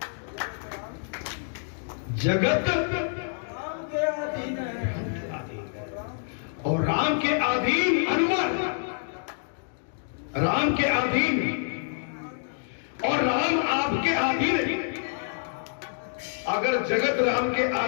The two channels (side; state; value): right; silent; digital silence